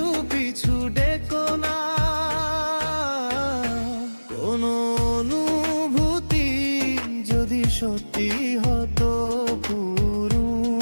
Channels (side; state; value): both; inverted; correlation -1.00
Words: পিছু ডেকো না। কোন অনুভূতি যদি সত্যি হতো পুরো,